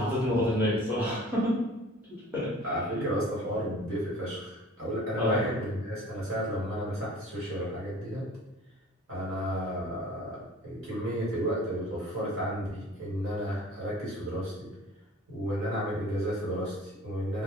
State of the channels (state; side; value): normal; both; correlation 0.46